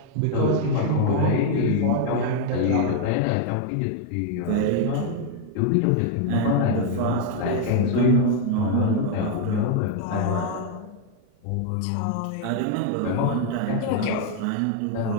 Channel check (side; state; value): both; different; correlation 0.00